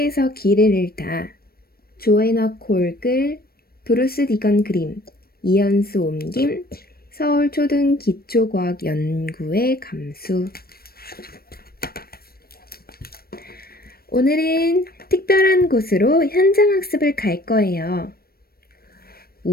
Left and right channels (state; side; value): late; right; 0.44 ms